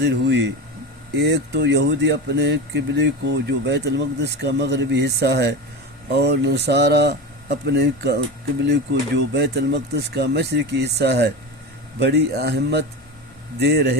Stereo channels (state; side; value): normal; both; correlation 0.24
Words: ہوئی۔ ایک تو یہودی اپنے قبلے کو جو بیت المقدس کا مغربی حصہ ہے، اور نصارہ اپنے قبلے کو جو بیت المقدس کا مشرقی حصہ ہے بڑی اہمیت دے